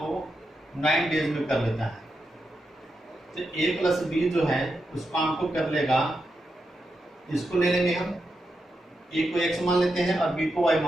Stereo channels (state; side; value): normal; both; correlation 0.86